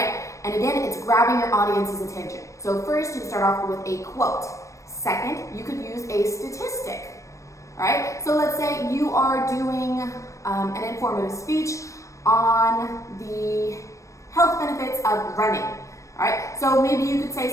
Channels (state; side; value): late; right; 0.15 ms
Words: And again, it's grabbing your audience's attention. So first, you start off with a quote. Second, you could use a statistic, all right? So let's say you are doing an informative speech on the health benefits of running, all right? So maybe you could